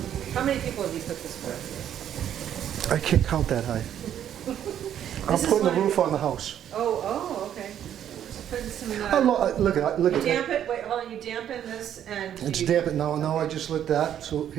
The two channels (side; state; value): left; quieter; 10.2 dB